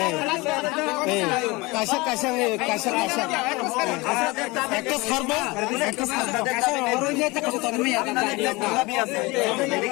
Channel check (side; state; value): right; quieter; 23.8 dB